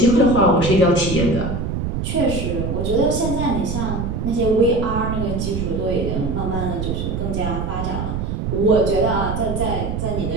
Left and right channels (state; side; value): noise; right; rumble, 3 dB below the sound